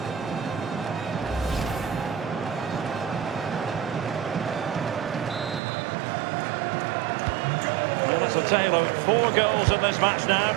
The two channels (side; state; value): left; drops out; at 5.6 s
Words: Well, that's a tale of 4 goals in this match now.